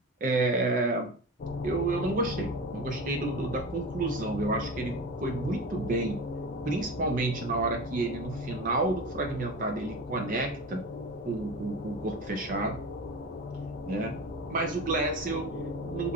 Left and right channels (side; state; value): both; normal; correlation 0.30